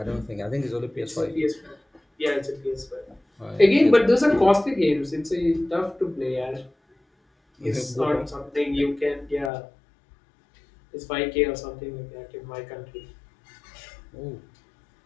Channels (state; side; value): drops out; right; at 9.5 s